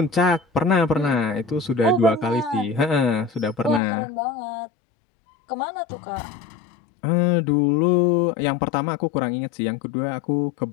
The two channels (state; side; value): drops out; right; at 3.8 s